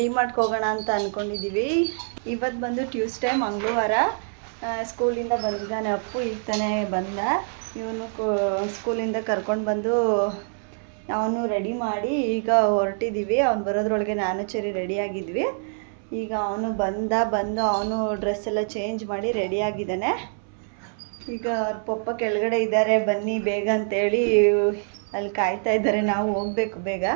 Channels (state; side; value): silent; left; 62 dB below the other